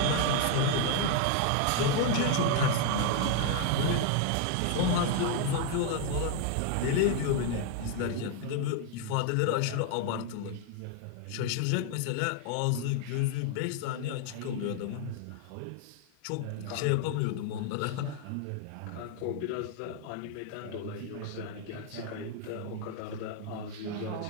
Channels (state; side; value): different; both; correlation 0.00